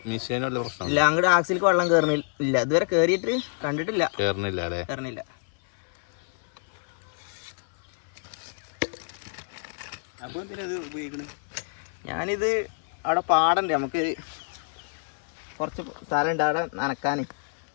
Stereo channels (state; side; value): silent; right; 60 dB below the other